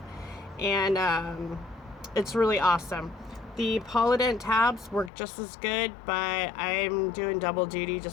and it's really awesome. The Polident tabs work just as good, but I'm doing double duty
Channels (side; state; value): right; drops out; at 5.1 s